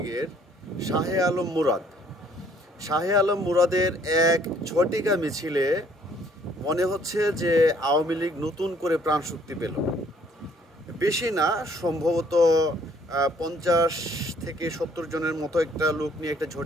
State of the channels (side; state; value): both; normal; correlation 0.62